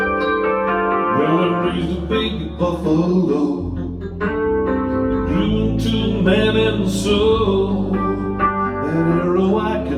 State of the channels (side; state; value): both; identical; correlation 1.00